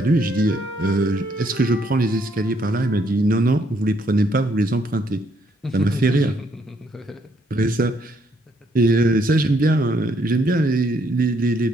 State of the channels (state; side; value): normal; both; correlation 0.70